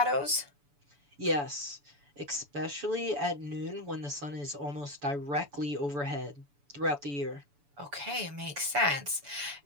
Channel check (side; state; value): left; late; 7.0 ms